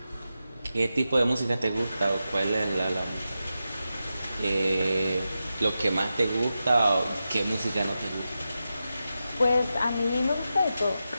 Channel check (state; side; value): inverted; both; correlation -0.91